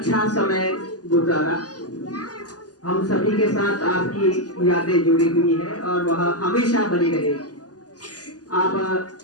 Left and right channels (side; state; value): right; late; 0.68 ms